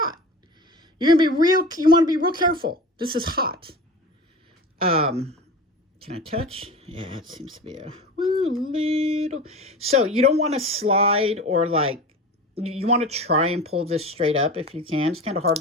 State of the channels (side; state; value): both; normal; correlation 0.33